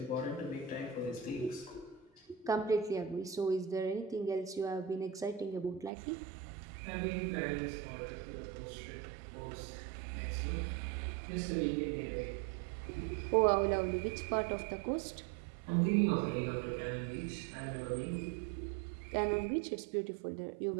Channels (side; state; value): left; drops out; at 5.9 s